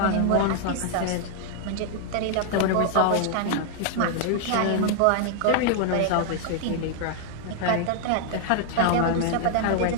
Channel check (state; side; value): different; both; correlation 0.00